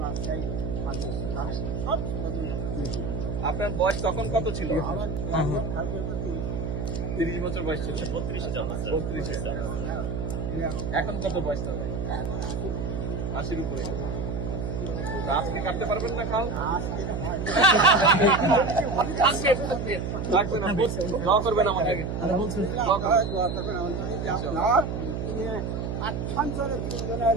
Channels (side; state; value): right; noise; hum, 3 dB below the sound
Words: চাই সব আপনার বয়স তখন কত ছিল? আমার 30 বছর বয়স ছিল। 32 জন আছে। 32 এখন কত বয়স তাহলে? 80 উপরে গেছে। তা আজকে কাটতে পারবেন না খাল? রাখবেন আপনি, দোয়া করবেন আমাকে। দোয়া করবেন। সঞ্চরের 3 জনের